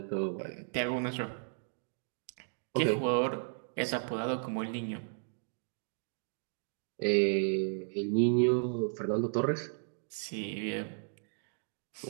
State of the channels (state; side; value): silent; left; digital silence